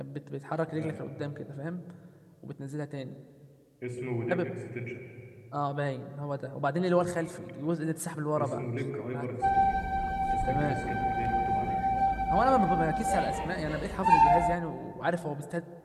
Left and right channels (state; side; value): identical; both; correlation 1.00